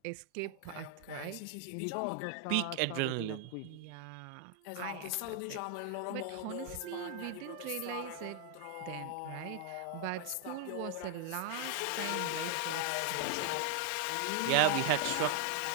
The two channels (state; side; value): different; both; correlation 0.00